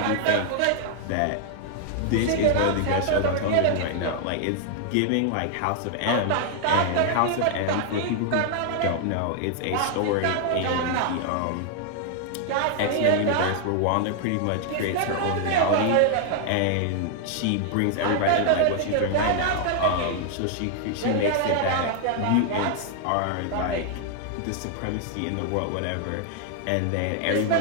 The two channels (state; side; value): different; both; correlation 0.00